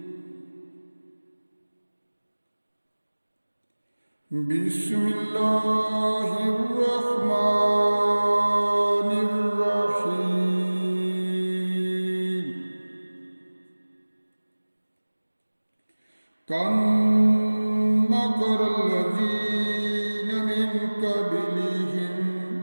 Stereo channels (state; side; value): inverted; both; correlation -1.00